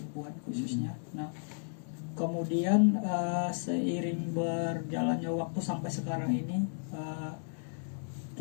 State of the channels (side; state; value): right; silent; digital silence